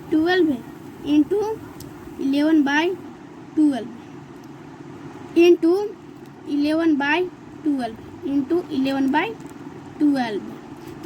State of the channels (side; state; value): both; identical; correlation 1.00